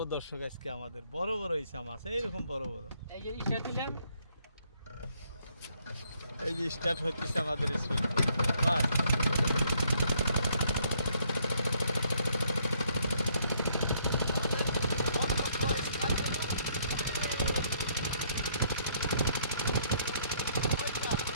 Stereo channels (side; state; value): both; inverted; correlation -0.68